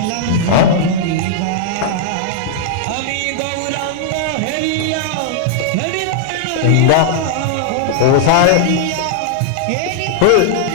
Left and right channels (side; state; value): both; different; correlation -0.01